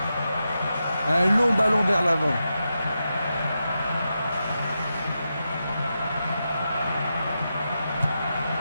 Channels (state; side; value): inverted; both; correlation -0.88